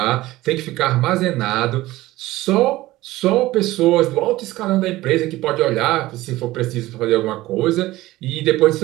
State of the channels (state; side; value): quieter; left; 17.5 dB